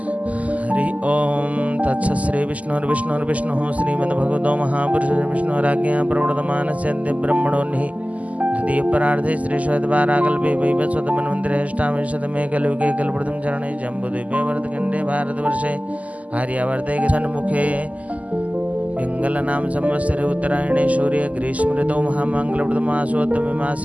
श्री विष्णुर्विष्णुर्विष्णुः श्रीमद्भगवतो महापुरुषो विष्णुराज्ञया प्रवर्तमानस्य ब्रह्मणोन्हि द्वितीयपरार्धे श्रीश्वेतवाराकल्पे वैवस्वतमन्वन्तरेष्टाविंशतमे कलियुगे कल्पप्रथम चरणे जम्बूद्वीपे भरतखण्डे भारतवर्षे आर्यावर्ते सन्मुखे पिङ्गलनाम संवत्सरे उत्तरायणे सूर्य ग्रीष्म ऋतौ महामङ्गलप्रदमासोत्तमे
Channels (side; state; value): left; late; 0.072 ms